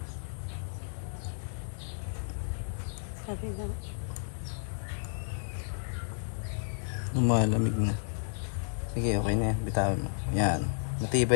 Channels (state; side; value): silent; right; digital silence